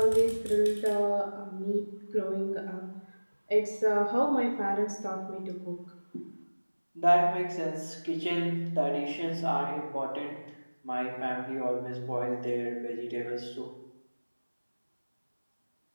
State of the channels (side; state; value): both; inverted; correlation -1.00